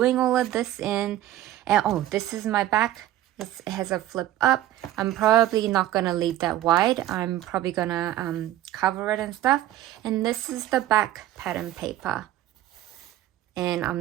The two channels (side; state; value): left; quieter; 13.8 dB